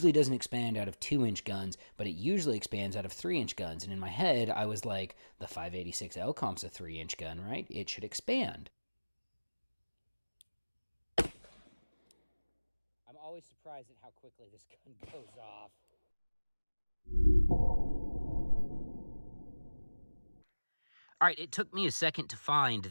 doesn't expand out of 2-inch guns, but it usually expands out of 3-inch guns. And in my head, I was like, the 586 LComp's a 3-inch gun, right? It should expand. I'm always surprised at how quickly this gun goes off. All right, it took me a second to find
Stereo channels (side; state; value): both; inverted; correlation -1.00